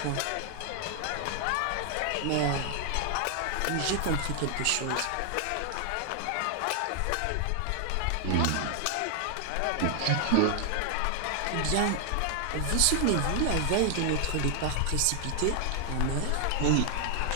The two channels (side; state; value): both; different; correlation 0.00